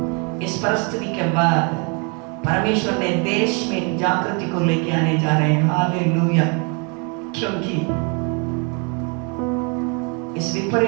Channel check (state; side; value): quieter; left; 34.3 dB